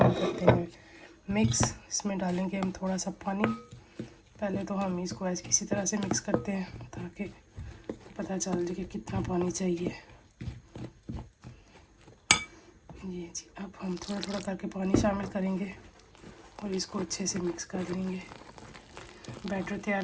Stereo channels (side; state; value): both; identical; correlation 1.00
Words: करते हैं मिक्स। इसमें डालेंगे हम थोड़ा सा पानी। पहले तो हम इसको ऐसे किसी तरह से मिक्स करते हैं ताकि पता चल जाए कि कितना पानी चाहिए। ये जी, अब हम थोड़ा थोड़ा करके पानी शामिल करेंगे और इसको अच्छे से मिक्स कर लेंगे। बैटर तैयार